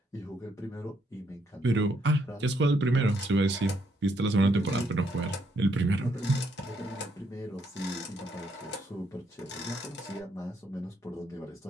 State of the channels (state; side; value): normal; both; correlation 0.73